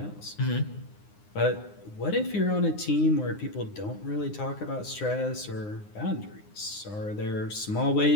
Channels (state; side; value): late; right; 9.7 ms